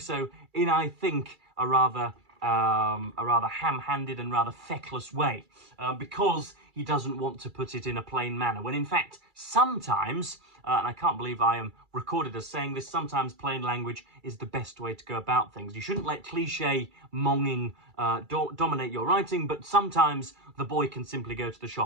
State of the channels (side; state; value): left; late; 2.3 ms